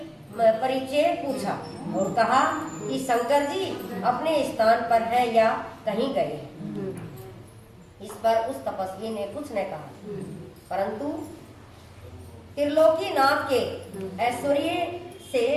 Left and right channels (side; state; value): both; identical; correlation 1.00